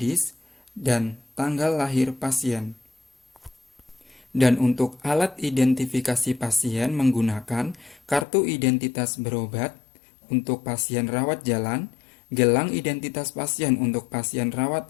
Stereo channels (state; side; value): drops out; right; at 8.2 s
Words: dan tanggal lahir pasien. Dan untuk alat identifikasi pasien menggunakan kartu identitas berobat untuk pasien rawat jalan, gelang identitas pasien untuk pasien rawat